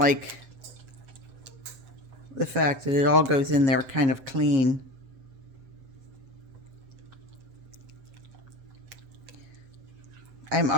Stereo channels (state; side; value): late; left; 7.4 ms